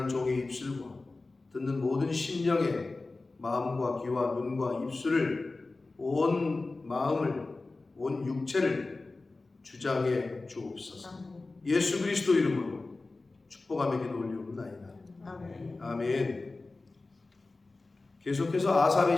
종의 입술과 듣는 모든 심령의 마음과 귀와 눈과 입술을 온 마음을 온 육체를 주장해 주옵소서. 예수 그리스도 이름으로 축복하며 기도 올리옵나이다. 아멘. 아멘. 계속해서 아삽의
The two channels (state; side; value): quieter; right; 3.4 dB